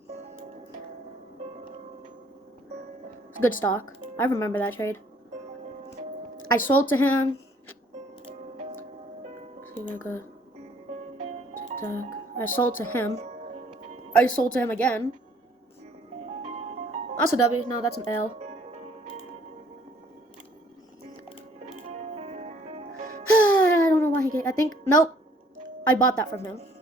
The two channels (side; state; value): both; normal; correlation 0.60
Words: It's good stock. I remember that trade. I sold to him. I sold to him. I sold to him again. That's a W. No, that's an L. I don't know why he gave. I think. Nope. I bought that from him.